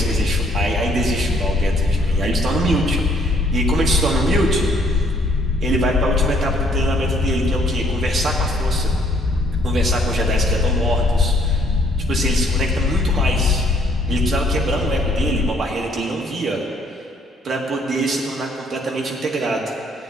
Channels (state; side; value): normal; both; correlation 0.64